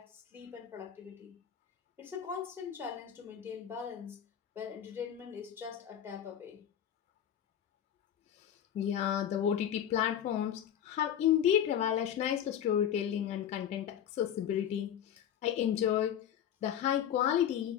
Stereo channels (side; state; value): right; quieter; 9.8 dB